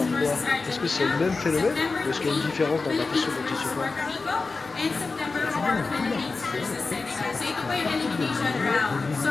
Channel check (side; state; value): right; quieter; 4.0 dB